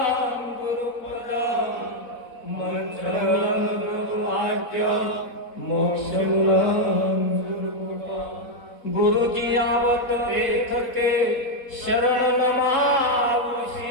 गुरुपदं मंत्रमूलं गुरुवाक्य मोक्षमूलं गुरुकृपा गुरुजी आवत लेखके शरण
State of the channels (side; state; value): right; late; 4.1 ms